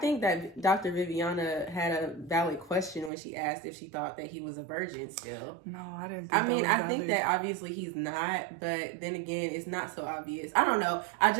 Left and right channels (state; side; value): drops out; left; at 3.1 s